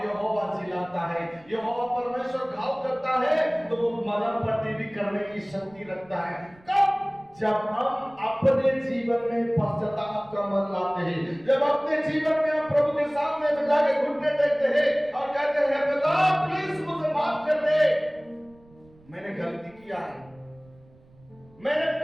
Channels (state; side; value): noise; right; rumble, 27 dB below the sound